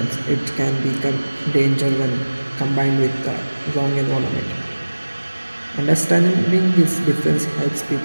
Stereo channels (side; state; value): both; inverted; correlation -1.00